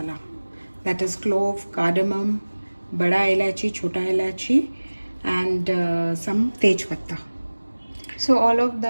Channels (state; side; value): inverted; both; correlation -1.00